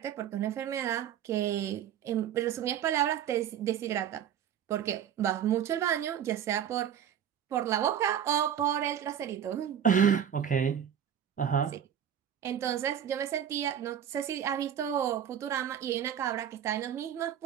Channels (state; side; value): quieter; left; 9.5 dB